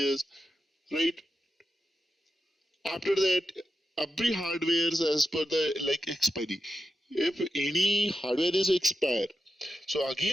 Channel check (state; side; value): normal; both; correlation 0.89